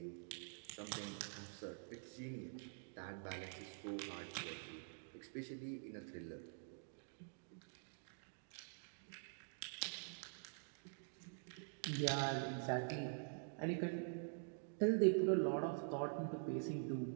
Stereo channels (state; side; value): silent; left; digital silence